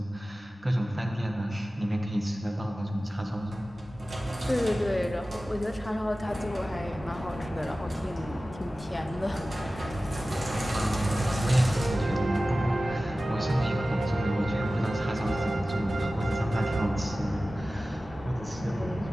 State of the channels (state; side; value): normal; both; correlation 0.96